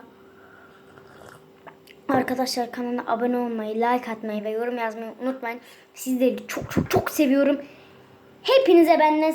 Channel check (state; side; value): identical; both; correlation 1.00